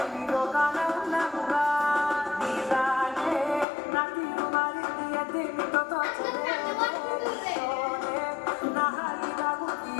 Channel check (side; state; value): right; drops out; at 3.7 s